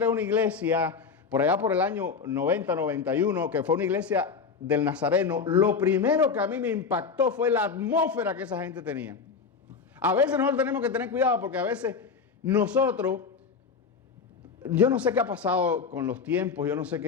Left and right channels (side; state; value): right; quieter; 5.5 dB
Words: a una iglesia, por allá por el año 90, 91, que fue una iglesia del Nazareno, lo primero que a mí me impactó fue la atmósfera que esa gente tenía. A veces nosotros tenemos que tener cuidado porque a veces nosotros, yo no sé qué ha pasado con los tiempos, yo no sé